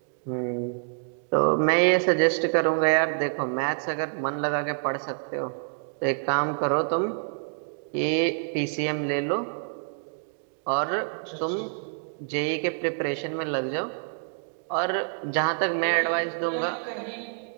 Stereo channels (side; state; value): left; silent; digital silence